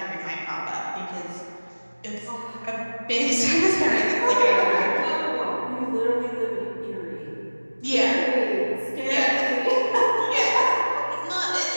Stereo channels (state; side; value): inverted; both; correlation -1.00